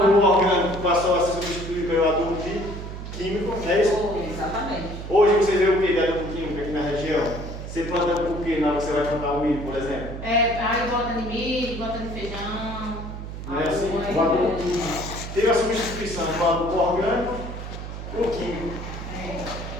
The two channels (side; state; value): right; noise; hum, 9 dB below the sound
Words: orgânico passou a ser substituído pelo adubo químico, não é isso? Exatamente. Hoje você vê o que de adubo químico aqui na região? Você planta o que na hora que você vai plantar o milho, por exemplo? Aí bota de milho, bota de feijão. Não é assim? O adubo teve a substituição do adubo orgânico por químico.